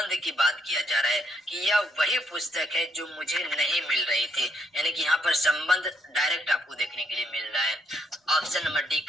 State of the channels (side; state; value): both; normal; correlation 0.72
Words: की बात किया जा रहा है कि यह वही पुस्तक है जो मुझे नहीं मिल रही थी, यानी कि यहाँ पर संबंध डायरेक्ट आपको देखने के लिए मिल रहा है। Option number D